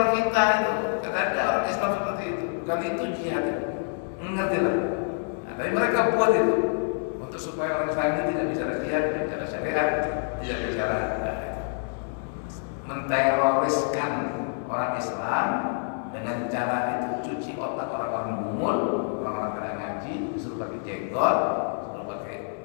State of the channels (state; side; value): silent; right; digital silence